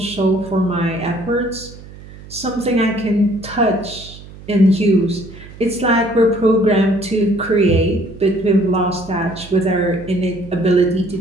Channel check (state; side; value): noise; right; hum, 18 dB below the sound